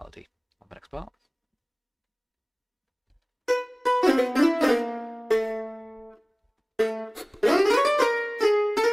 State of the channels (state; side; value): identical; both; correlation 1.00